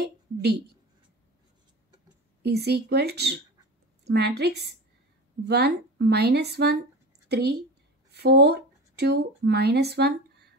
D is equal to matrix 1, minus 1, 3, 4, 2, minus 1,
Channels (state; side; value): normal; both; correlation 0.30